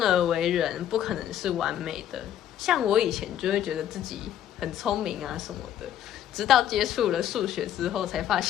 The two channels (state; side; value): quieter; right; 10.9 dB